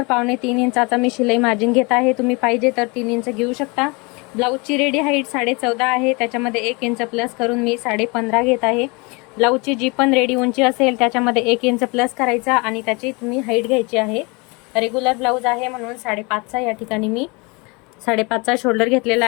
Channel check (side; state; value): right; quieter; 28.4 dB